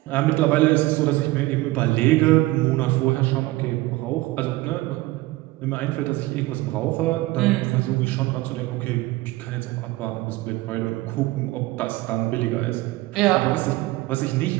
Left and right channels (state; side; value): quieter; left; 19.4 dB